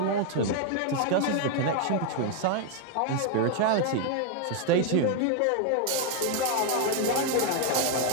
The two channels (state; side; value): different; both; correlation 0.00